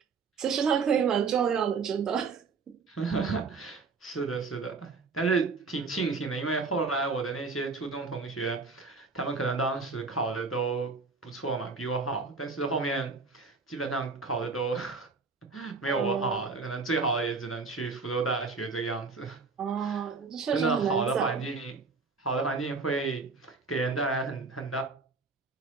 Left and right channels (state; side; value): quieter; left; 4.4 dB